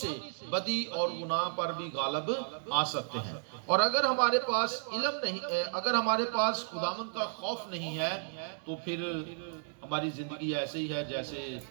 بدی اور گناہ پر بھی غالب آ سکتے ہیں۔ اور اگر ہمارے پاس علم نہیں ہے، اگر ہمارے پاس خداوند کا خوف نہیں ہے، تو پھر ہماری زندگی ایسے ہی ہے جیسے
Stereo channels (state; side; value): silent; left; digital silence